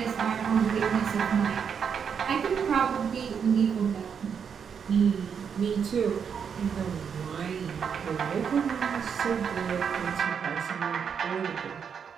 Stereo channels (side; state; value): left; quieter; 7.0 dB